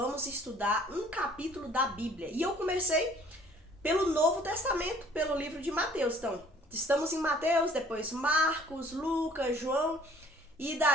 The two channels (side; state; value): both; normal; correlation 0.55